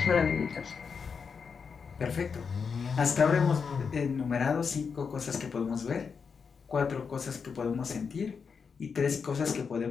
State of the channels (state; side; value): quieter; right; 5.8 dB